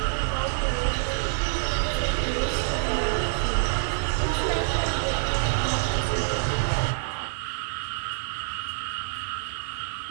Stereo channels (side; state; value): left; silent; 60 dB below the other